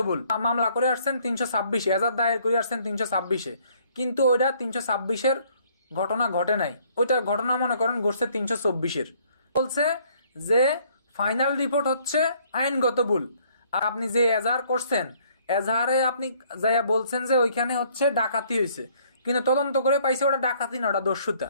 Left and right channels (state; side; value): inverted; both; correlation -0.63